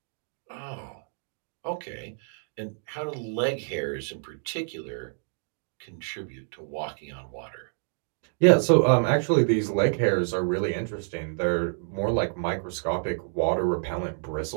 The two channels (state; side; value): silent; left; digital silence